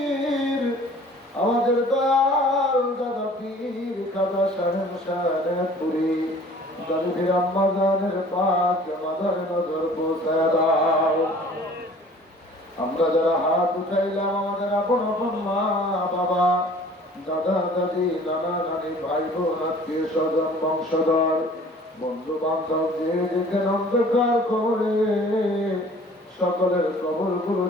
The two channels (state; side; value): normal; both; correlation 0.50